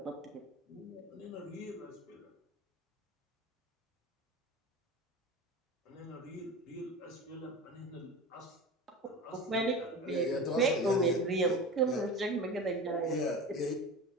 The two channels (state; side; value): normal; both; correlation 0.31